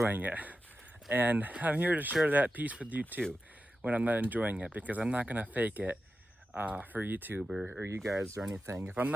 it. And I'm here to share that piece with you too, when I'm not enjoying it, because I'm not gonna fake it for YouTube or you guys or anything. If I'm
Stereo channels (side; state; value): both; normal; correlation 0.92